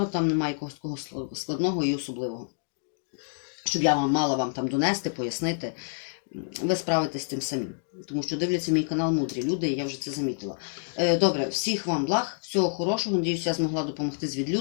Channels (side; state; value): right; silent; digital silence